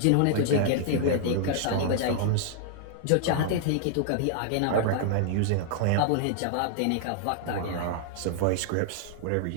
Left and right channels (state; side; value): different; both; correlation -0.01